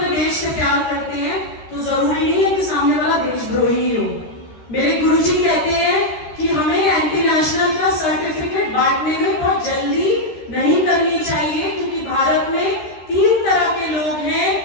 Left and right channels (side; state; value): right; late; 13 ms